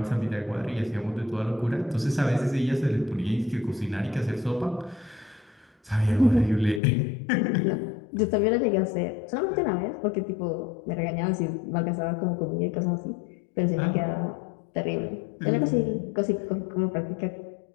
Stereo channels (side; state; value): right; drops out; at 6.8 s